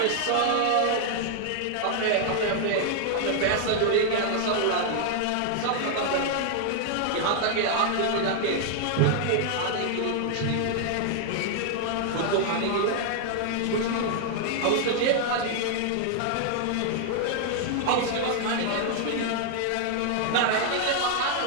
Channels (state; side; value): different; both; correlation 0.00